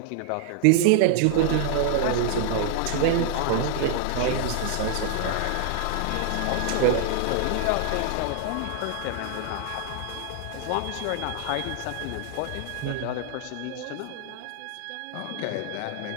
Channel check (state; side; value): different; both; correlation 0.00